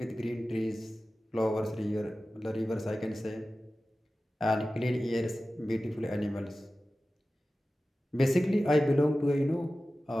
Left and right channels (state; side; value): normal; both; correlation 0.95